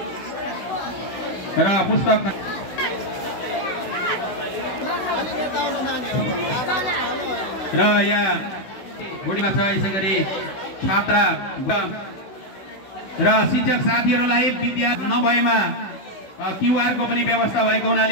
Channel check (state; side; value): late; right; 16 ms